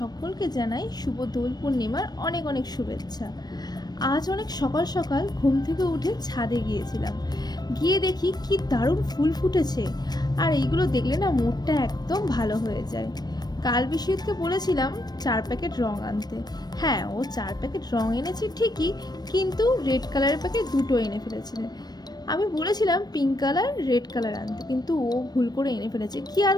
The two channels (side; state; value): right; late; 0.19 ms